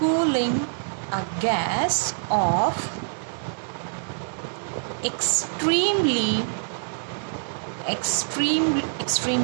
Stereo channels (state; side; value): silent; left; digital silence